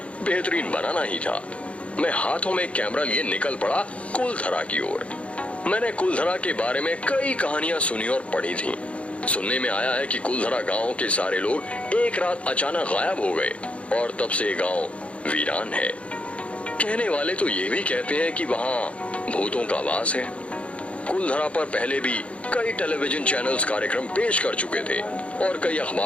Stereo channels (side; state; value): right; late; 0.062 ms